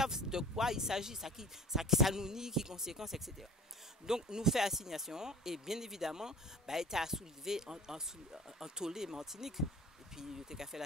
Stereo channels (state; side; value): normal; both; correlation 0.41